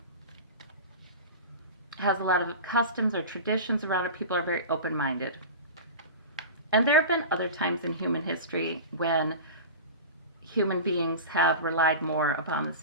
has a lot of customs or traditions around it. People are very open minded. And there have been other times in human history when human beings have relied more upon the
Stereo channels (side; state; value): both; inverted; correlation -0.30